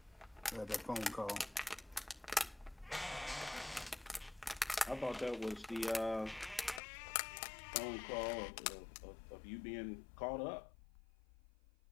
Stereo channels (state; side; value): drops out; right; at 6.8 s